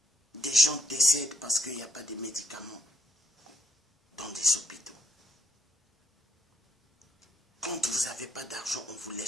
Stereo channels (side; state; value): both; normal; correlation 0.71